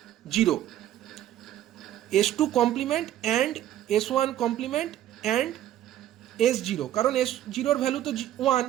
S2 complement and S1 complement and S0, কারণ S0 ভ্যালু তো 1,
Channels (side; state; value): left; quieter; 12.2 dB